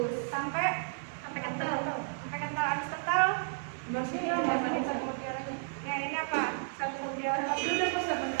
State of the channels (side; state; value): left; silent; 56 dB below the other